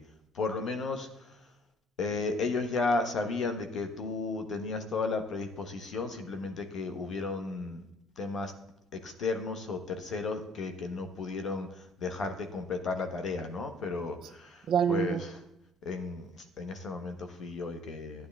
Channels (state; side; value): normal; both; correlation 0.57